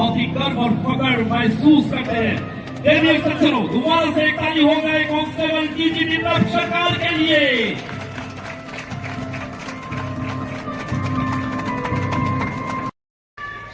ही गर्व और फख्र महसूस करते हैं। देखिए सज्जनों दोबारा से एक ताली हो गए कांस्टेबल पीजी दीपक सरकार के लिए।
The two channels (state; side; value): identical; both; correlation 1.00